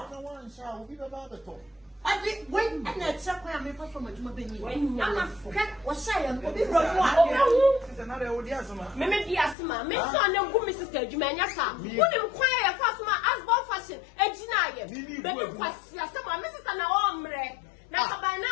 will be about the top. I did wait and that's up where I'm from a Jumabini. I'm a friend or say, I'm another Odiasma. Maybe Asma, Miss Son of Mrs. Jumania, wouldn't inquire fast my husband fashion, and deny it. But it was some Mrs. Ombre. Now, by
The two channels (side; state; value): right; drops out; at 9.6 s